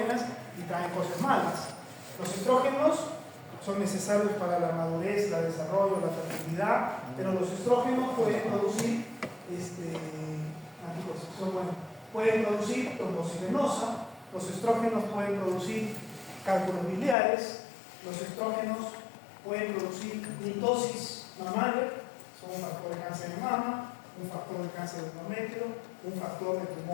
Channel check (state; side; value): drops out; right; at 17.2 s